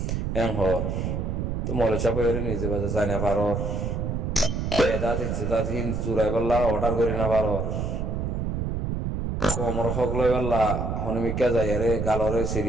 হর তো মলে চাপ নিজে বাজে যাই না পারর এদা দেখছে তাত হিন চুরাই পাল্লা অর্ডার করি না পারর কমর হক লই পাল্লা হনমিকা যাই আরে গালরে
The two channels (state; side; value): noise; right; rumble, 1 dB below the sound